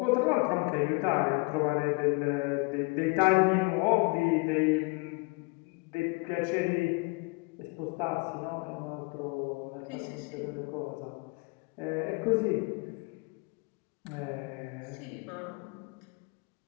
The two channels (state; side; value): quieter; right; 28.9 dB